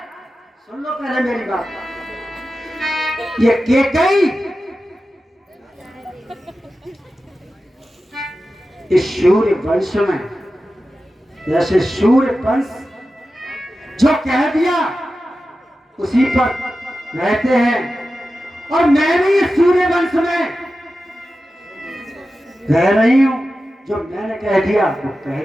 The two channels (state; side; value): normal; both; correlation 0.93